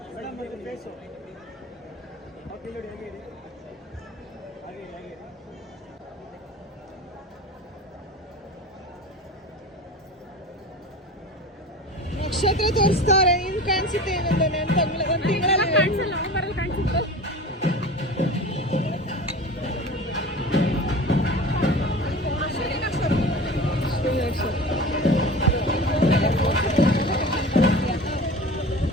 ನಕ್ಷತ್ರ ತೋರಿಸ್ತಾರೆ. ನಿಮ್ಗೆ ಕಾಣಿಸುತ್ತೆ ಏನಂದ್ರೆ ಒಂದು ತಿಂಗಳಲ್ಲಿ ಕಾಣಿಸಲ್ಲ. ಕಾಣಿಸುತ್ತೆ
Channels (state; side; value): normal; both; correlation 0.35